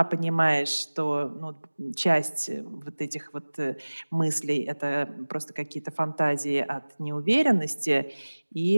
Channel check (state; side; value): inverted; both; correlation -1.00